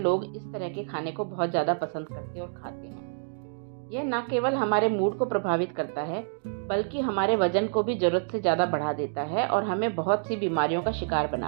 इस तरह के खाने को बहुत ज़्यादा पसंद करते और खाते हैं। यह न केवल हमारे मूड को प्रभावित करता है, बल्कि हमारे वजन को भी जरूरत से ज़्यादा बढ़ा देता है और हमें बहुत सी बीमारियों का शिकार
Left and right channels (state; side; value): silent; left; digital silence